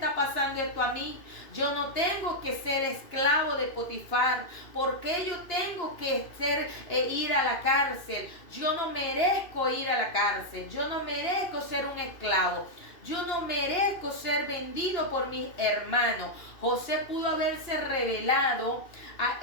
pasando esto a mí? Yo no tengo que ser esclavo de Potifar. ¿Por qué yo tengo que ir a la cárcel? Yo no merezco ir a la cárcel. Yo no merezco ser un esclavo. Yo no merezco ser vendido por mis hermanos. José pudo haberse revelado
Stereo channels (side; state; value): right; late; 2.5 ms